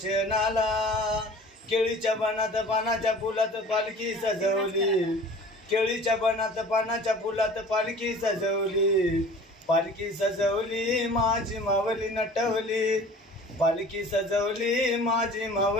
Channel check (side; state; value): both; normal; correlation 0.45